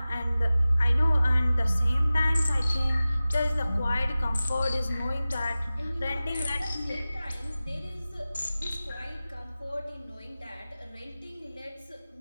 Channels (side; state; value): both; inverted; correlation -0.96